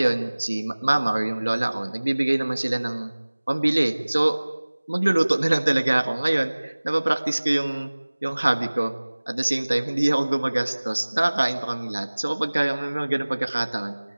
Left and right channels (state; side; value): inverted; both; correlation -1.00